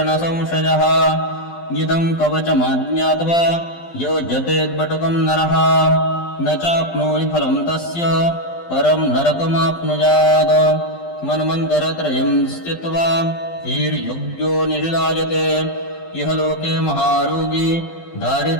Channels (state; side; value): late; right; 12 ms